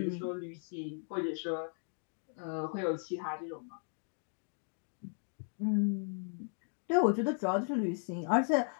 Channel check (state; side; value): silent; right; 54 dB below the other